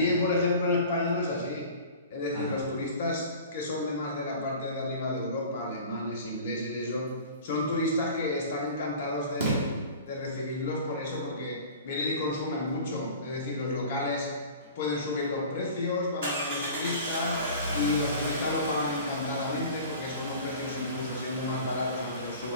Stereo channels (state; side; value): inverted; both; correlation -0.41